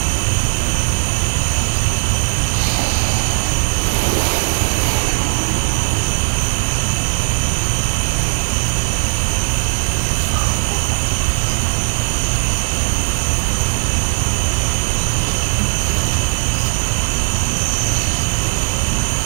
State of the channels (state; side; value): silent; left; digital silence